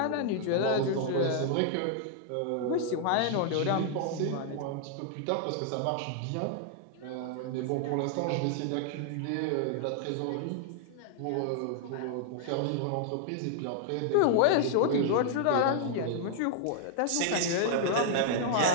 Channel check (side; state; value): both; different; correlation 0.00